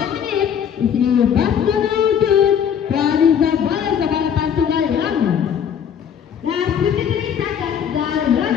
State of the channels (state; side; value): quieter; right; 8.3 dB